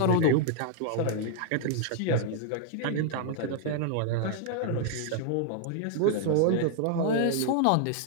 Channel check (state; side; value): different; both; correlation 0.00